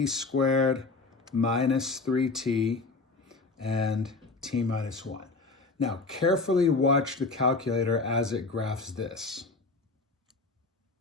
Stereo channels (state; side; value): quieter; right; 3.7 dB